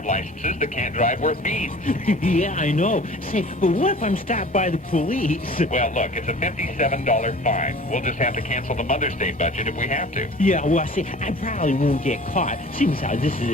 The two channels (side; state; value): both; normal; correlation 0.44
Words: licenses that can't drive worth beans. Yeah, I know. Say, but what if I'm stopped by the police? Well, look, it's a $57 fine. We'll just have to cancel the Mother's Day budget if we have to. Yeah, well, see, I probably won't get caught. Seems how this